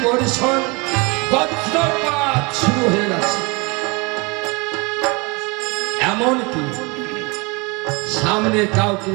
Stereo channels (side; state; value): left; quieter; 28.3 dB